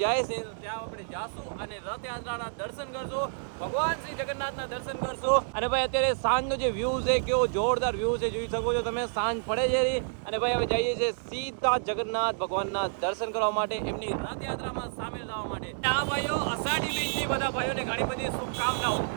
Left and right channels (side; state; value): left; silent; digital silence